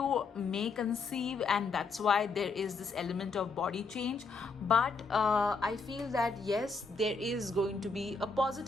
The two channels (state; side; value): quieter; right; 4.3 dB